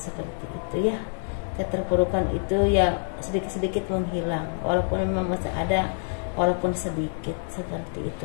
itu ya. Keterpurukan itu ya sedikit-sedikit menghilang, walaupun memang masih ada, walaupun sedikit seperti itu.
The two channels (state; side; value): silent; right; digital silence